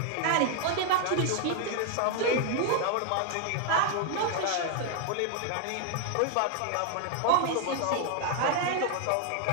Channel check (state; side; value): different; both; correlation 0.00